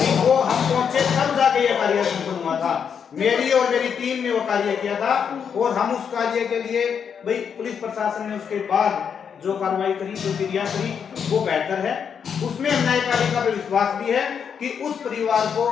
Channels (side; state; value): right; quieter; 7.2 dB